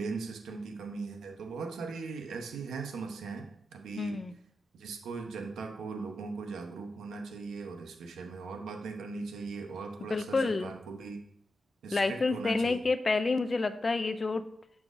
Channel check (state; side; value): normal; both; correlation 0.89